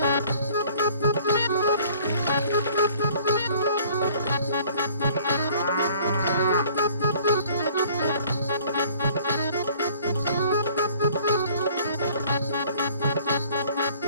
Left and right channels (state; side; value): inverted; both; correlation -0.55